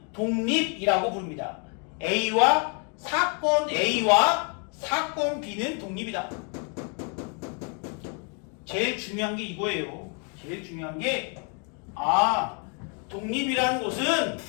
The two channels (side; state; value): right; quieter; 37.5 dB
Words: 독립이라고 부릅니다. 사건 A와 사건 B는 독립이다. 제일 중요한 게 이거예요. 제일 중요한 게 독립이라는 것은